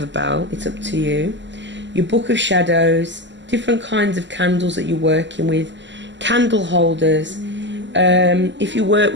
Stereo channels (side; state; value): left; late; 0.53 ms